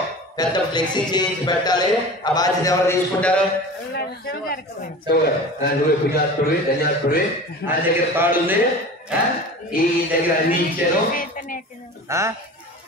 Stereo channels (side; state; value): both; normal; correlation 0.36